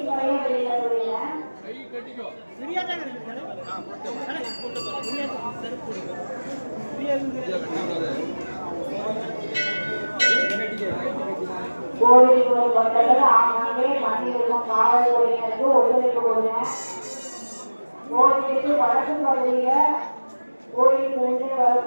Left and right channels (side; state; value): both; inverted; correlation -1.00